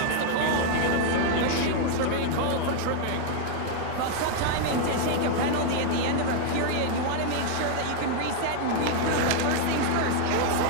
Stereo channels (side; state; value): both; different; correlation 0.00